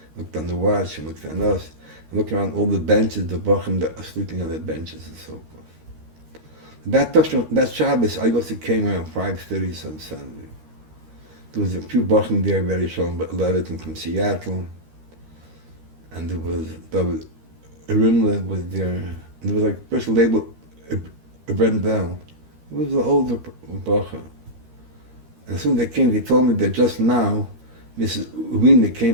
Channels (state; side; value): late; left; 13 ms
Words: looked on the watch and looked at us, and looked around all the benches, the Bochum that are sleeping on the benches and so forth. That Shabbos, I also came around 5:30 on Sunday. There was a few Bochum there, very strong, but Levitin from Seattle. And there was Rimla was there, and there was like a person labeled Brendel. It was an older Bacha. And as soon as they came, they told me that just now, Mrs. Wiener came